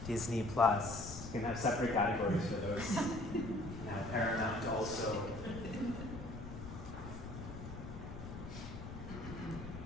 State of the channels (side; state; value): left; noise; rumble, 10 dB below the sound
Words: Disney Plus. You can have separate categories for those. Now Paramount also.